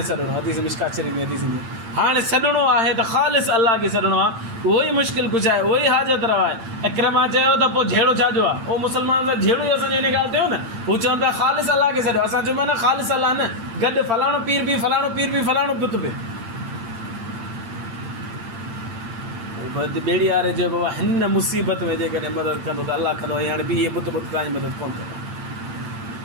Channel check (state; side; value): late; left; 8.8 ms